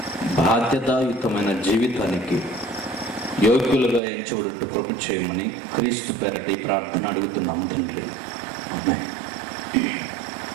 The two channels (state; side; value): drops out; left; at 4.0 s